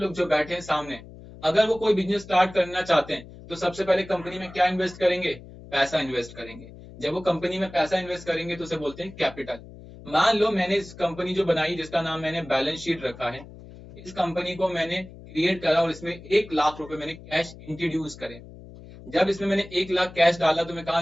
जो बैठे हैं सामने, अगर वो कोई बिजनेस स्टार्ट करना चाहते हैं तो सबसे पहले कंपनी में क्या इन्वेस्ट करेंगे? पैसा इन्वेस्ट करेंगे। जब वो कंपनी में पैसा इन्वेस्ट करेंगे तो उसे बोलते हैं कैपिटल। मान लो मैंने इस कंपनी जो बनाई, जिसका नाम मैंने बैलेंस शीट रखा है, इस कंपनी को मैंने क्रिएट करा और इसमें 1 लाख रुपए मैंने कैश इंट्रोड्यूस करे। जब इसमें मैंने 1 लाख कैश डाला तो मैं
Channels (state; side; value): noise; left; hum, 17 dB below the sound